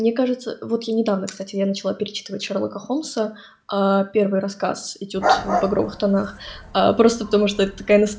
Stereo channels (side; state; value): both; identical; correlation 1.00